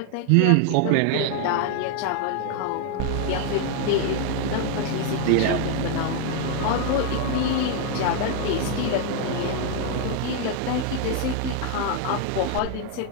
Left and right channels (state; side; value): different; both; correlation 0.00